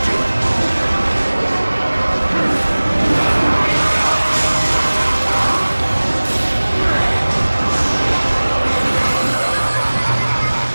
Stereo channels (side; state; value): both; inverted; correlation -1.00